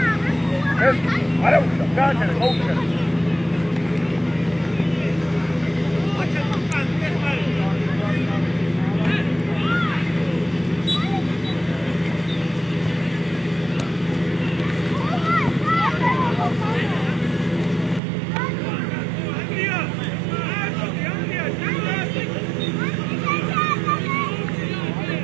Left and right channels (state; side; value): drops out; left; at 18.0 s